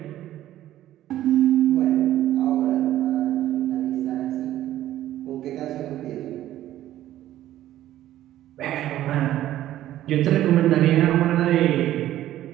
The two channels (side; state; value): left; quieter; 13.4 dB